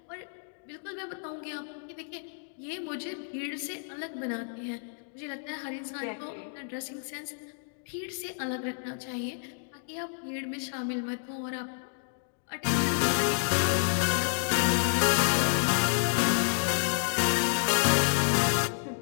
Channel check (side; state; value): right; silent; digital silence